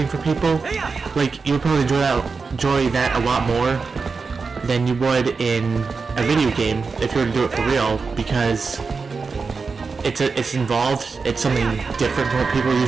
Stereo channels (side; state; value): left; quieter; 4.7 dB